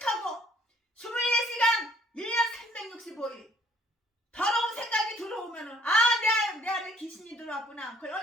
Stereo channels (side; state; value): both; normal; correlation 0.61